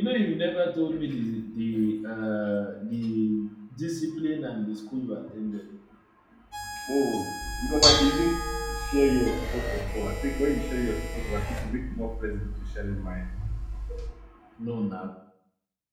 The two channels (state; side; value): identical; both; correlation 1.00